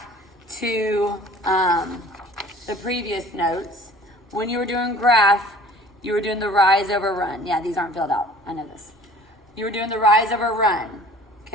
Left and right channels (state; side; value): normal; both; correlation 0.48